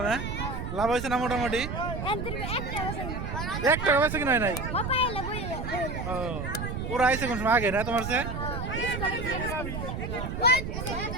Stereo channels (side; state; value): right; noise; rumble, 5 dB below the sound